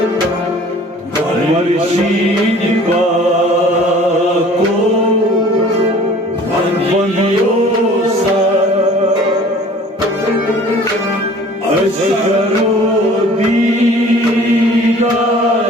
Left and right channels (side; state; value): both; normal; correlation 0.49